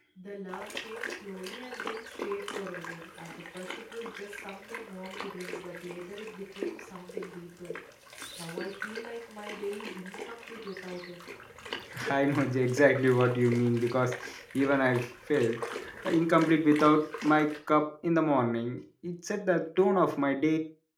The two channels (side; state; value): both; identical; correlation 1.00